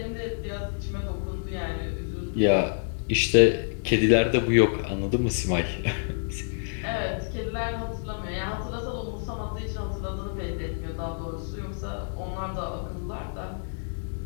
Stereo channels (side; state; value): right; silent; digital silence